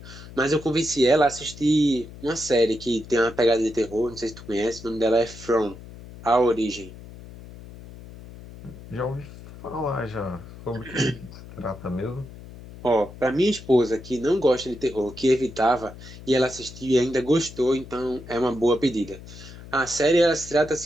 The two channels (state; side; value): noise; left; hum, 16 dB below the sound